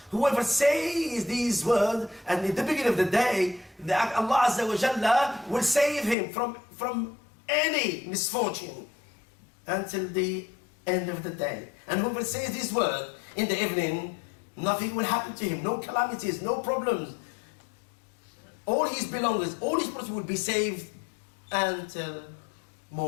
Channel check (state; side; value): drops out; right; at 6.2 s